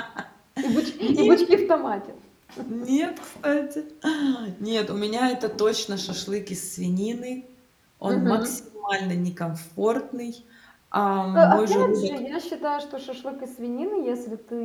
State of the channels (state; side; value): identical; both; correlation 1.00